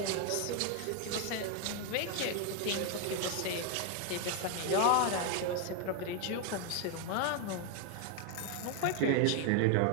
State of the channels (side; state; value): both; different; correlation 0.01